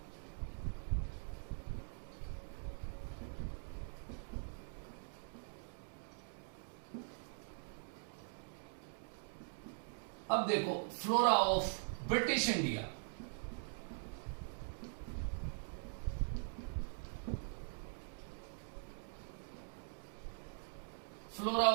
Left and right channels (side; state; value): left; silent; digital silence